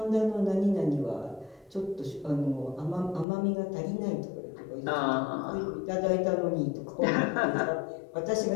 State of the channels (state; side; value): drops out; right; at 3.2 s